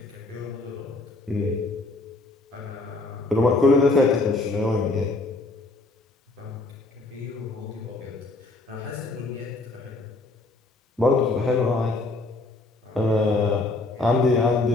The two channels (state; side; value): quieter; right; 3.2 dB